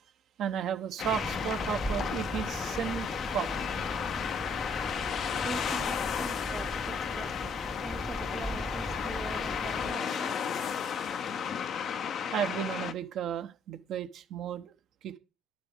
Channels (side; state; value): both; normal; correlation 0.65